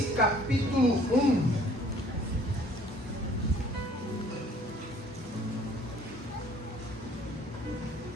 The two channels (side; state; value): both; normal; correlation 0.56